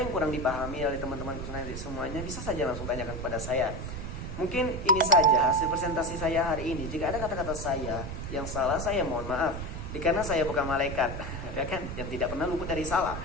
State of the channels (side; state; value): right; noise; rumble, 6 dB below the sound